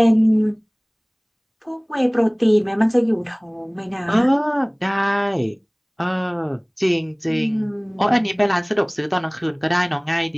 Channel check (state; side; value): identical; both; correlation 1.00